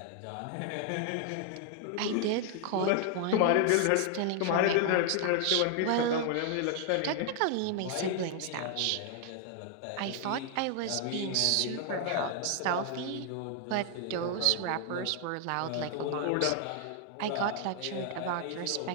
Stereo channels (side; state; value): both; different; correlation 0.00